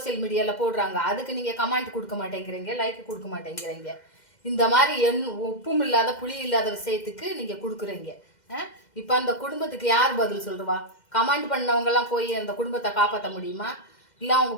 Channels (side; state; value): right; late; 2.1 ms